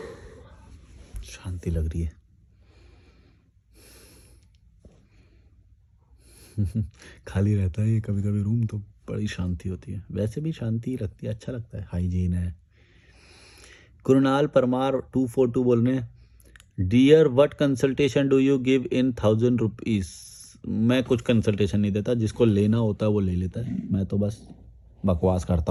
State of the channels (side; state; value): both; identical; correlation 1.00